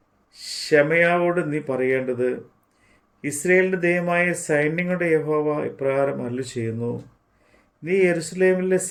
ശമയാവോട് നീ പറയേണ്ടത്, ഇസ്രയേലിൻ്റെ ദൈവമായ സൈന്യങ്ങളുടെ യഹോവ ഇപ്രകാരം അരുളി ചെയ്യുന്നു. നീ യെരൂശലേമിലെ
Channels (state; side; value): identical; both; correlation 1.00